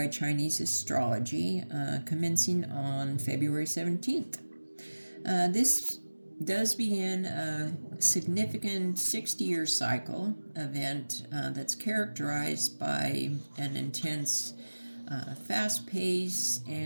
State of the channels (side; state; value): both; inverted; correlation -1.00